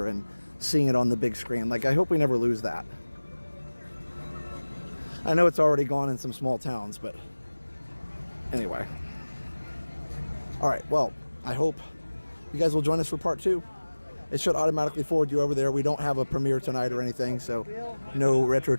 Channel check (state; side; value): inverted; both; correlation -1.00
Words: and seeing it on the big screen. Like, I hope we never lose that. I know it's already gone in some small towns, but anyway. All right, well, I hope you guys will join us for part 2. It should automatically forward you over there. We don't have a premiere tonight or anything, so no Retro